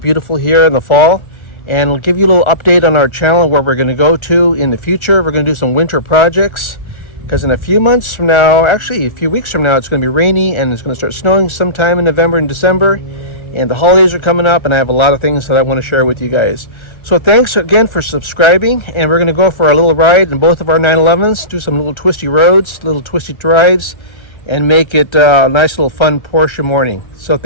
here in the fall. And we'll give you a little update on our channel where we're going to go to in the future. We're going to do some winter projects because in a few months from now, actually a few weeks from now, it's going to be rainy and it's going to start snowing sometime in November and December. And the holidays are coming up and I have a lot of things that I want to share with you guys. So thanks again for subscribing, and we're going to go for a little ride in both of our 911's, do some little twisty roads, little twisty drives, and make it a nice little fun Porsche morning. So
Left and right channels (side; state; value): right; late; 1.4 ms